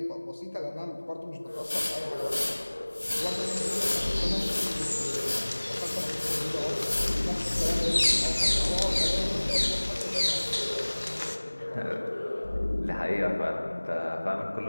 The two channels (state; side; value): inverted; both; correlation -1.00